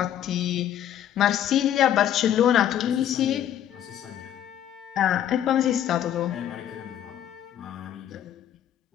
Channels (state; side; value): quieter; right; 10.7 dB